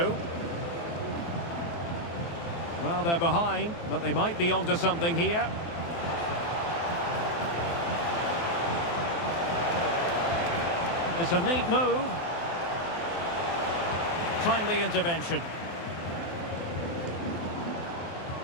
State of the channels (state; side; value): late; right; 23 ms